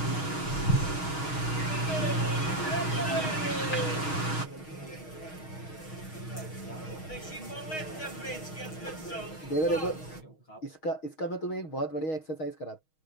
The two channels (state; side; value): late; right; 6.4 ms